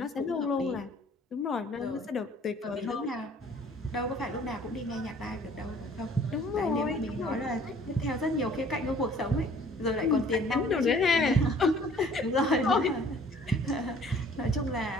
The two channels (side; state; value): both; normal; correlation 0.54